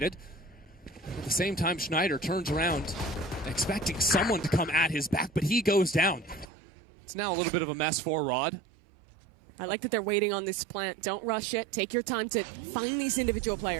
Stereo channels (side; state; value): left; drops out; at 6.5 s